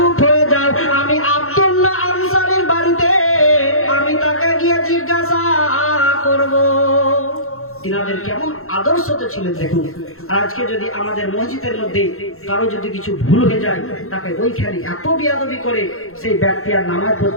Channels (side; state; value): right; late; 0.62 ms